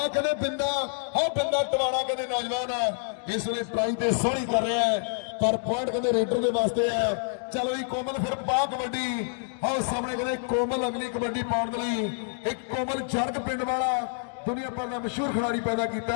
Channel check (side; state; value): right; silent; digital silence